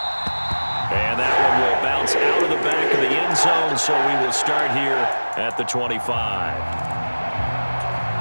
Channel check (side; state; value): both; inverted; correlation -1.00